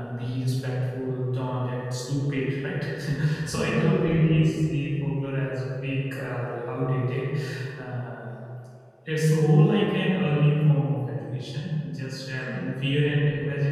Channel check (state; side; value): identical; both; correlation 1.00